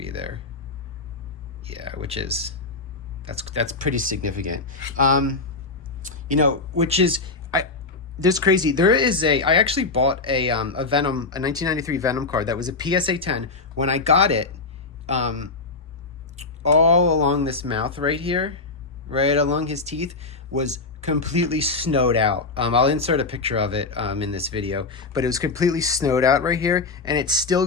there. Yeah, which is, that's pretty significant. Which is, there's crazy. There is I actually bought a Venom, a 1993 Venom card that was a PSA 10. When I got it, all along this mouth right here, right along his teeth, was completely snowed out. I'll insert a picture of it in this video, but it was completely snowed out right here, and it still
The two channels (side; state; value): right; quieter; 3.8 dB